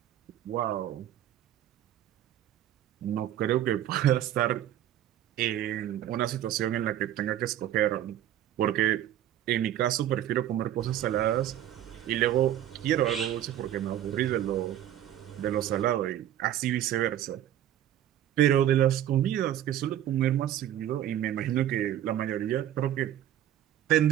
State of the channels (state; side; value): quieter; left; 11.7 dB